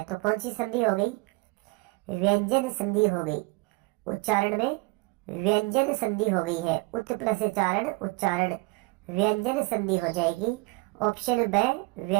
तो कौन सी संधि हो गई? व्यंजन संधि हो गई। उच्चारण में व्यंजन संधि हो गई है। उत प्लस चारण उच्चारण व्यंजन संधि हो जाएगी, ऑप्शन ब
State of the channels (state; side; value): quieter; left; 25.5 dB